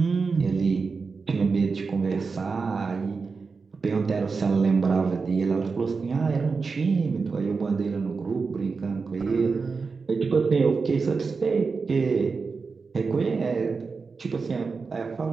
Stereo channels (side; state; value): left; quieter; 4.7 dB